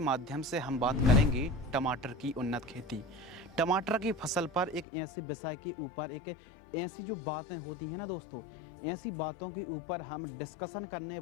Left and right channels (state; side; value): drops out; right; at 4.9 s